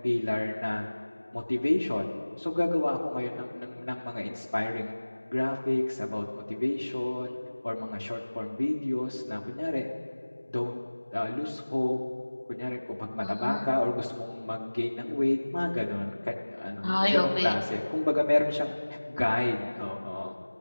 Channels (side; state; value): both; inverted; correlation -1.00